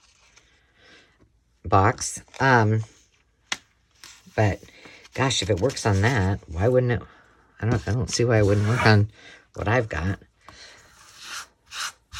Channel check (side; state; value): both; identical; correlation 1.00